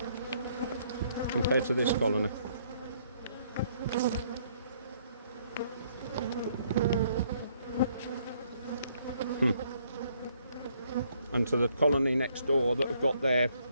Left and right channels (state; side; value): inverted; both; correlation -0.67